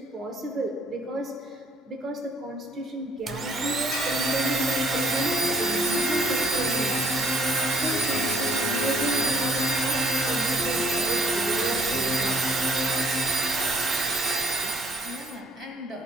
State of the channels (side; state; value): both; normal; correlation 0.65